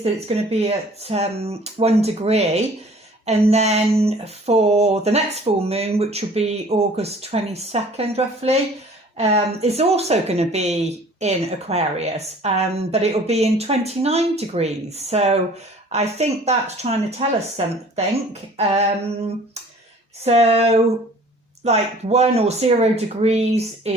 that it's going to be at 1 degree, and then for the next full moon, which will be August 22nd roughly, is also going to be in Aquarius, but it will be in 29 degrees. So I think that's trying to tell us something. So like 1 or 0 degrees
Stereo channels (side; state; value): both; normal; correlation 0.50